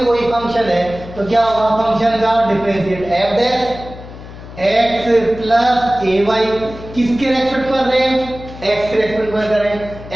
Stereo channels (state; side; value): noise; left; hum, 15 dB below the sound